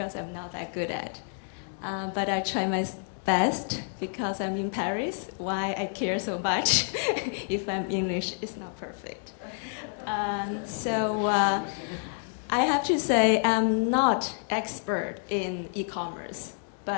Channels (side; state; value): right; silent; 59 dB below the other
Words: I'm not that good at. But I try my best because I'm in Paris. Why I care so much if I'm English is not perfect. I have to say I'm not expert in e-commerce,